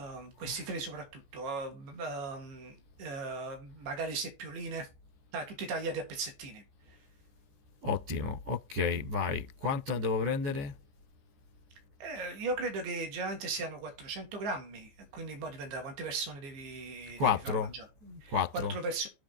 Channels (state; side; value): late; left; 14 ms